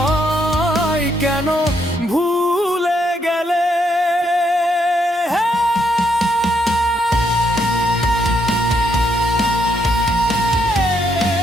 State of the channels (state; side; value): normal; both; correlation 0.75